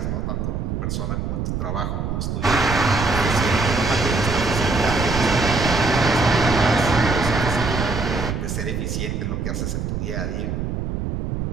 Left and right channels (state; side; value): noise; right; rumble, 2 dB below the sound